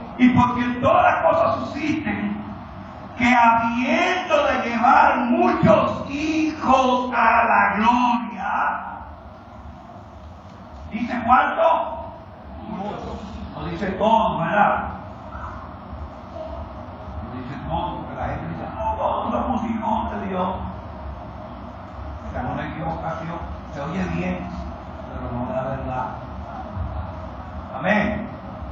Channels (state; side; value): identical; both; correlation 1.00